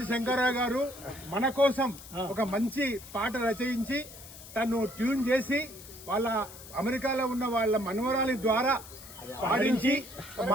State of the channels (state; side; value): noise; left; hiss, 16 dB below the sound